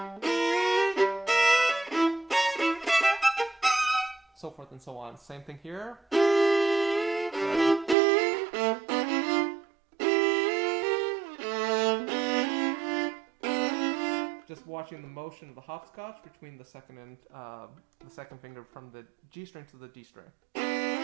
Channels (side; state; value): left; drops out; at 8.0 s